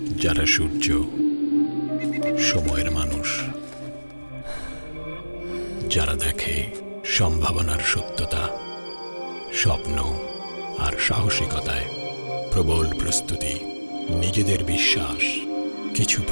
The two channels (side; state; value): both; inverted; correlation -1.00